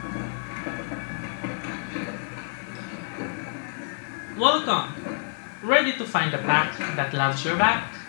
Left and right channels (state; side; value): silent; right; 60 dB below the other